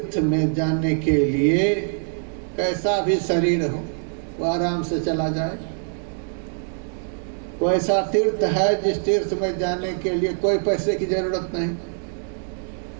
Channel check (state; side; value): silent; left; digital silence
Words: में जाने के लिए कैसा भी शरीर हो वो आराम से चला जाए? कोई ऐसा तीर्थ है जिस तीर्थ में जाने के लिए कोई पैसे की जरूरत नहीं,